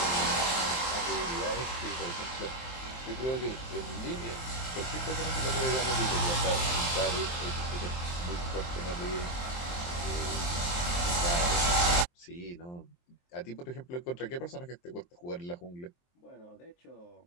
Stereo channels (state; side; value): late; right; 23 ms